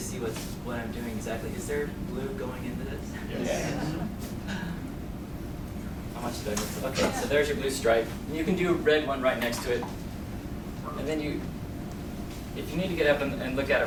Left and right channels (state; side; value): identical; both; correlation 1.00